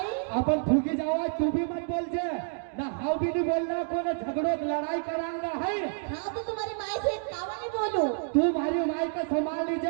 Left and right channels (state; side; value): silent; left; digital silence